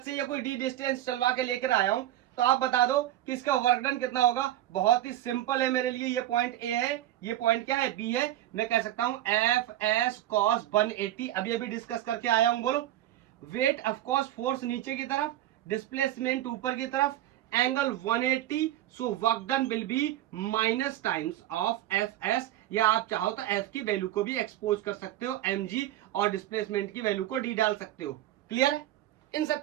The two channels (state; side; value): quieter; left; 13.5 dB